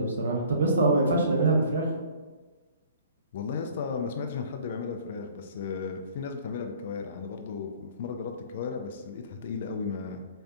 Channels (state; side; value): inverted; both; correlation -0.52